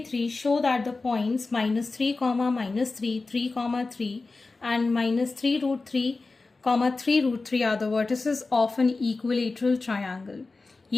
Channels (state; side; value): quieter; right; 3.7 dB